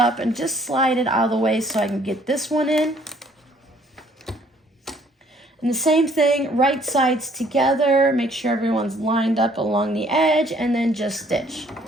and just slide it out of the way so I can get this one in. And the same thing, right sides together, make sure everyone's lined up along the edge, and then just stitch.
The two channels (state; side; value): normal; both; correlation 0.62